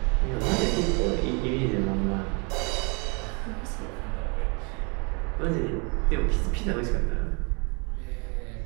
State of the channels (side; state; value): left; quieter; 33.5 dB